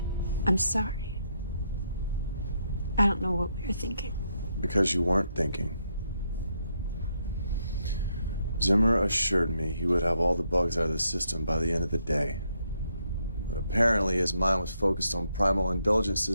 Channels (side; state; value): both; inverted; correlation -0.77